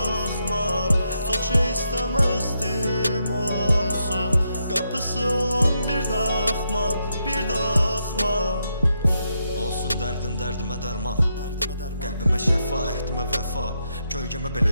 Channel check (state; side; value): inverted; both; correlation -0.82